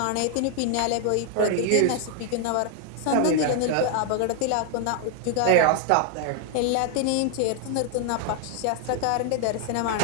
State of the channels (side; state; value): both; different; correlation 0.00